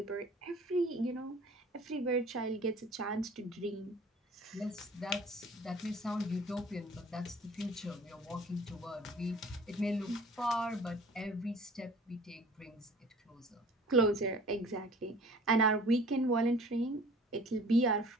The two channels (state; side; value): normal; both; correlation 0.48